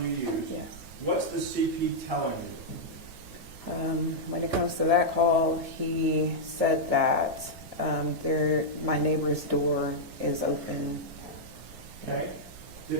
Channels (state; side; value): normal; both; correlation -0.07